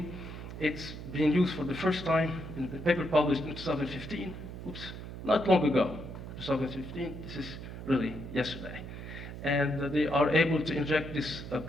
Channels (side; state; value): right; noise; hum, 10 dB below the sound